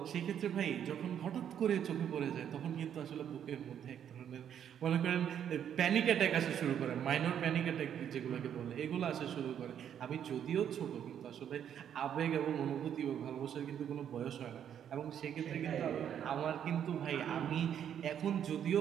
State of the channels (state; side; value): quieter; left; 9.2 dB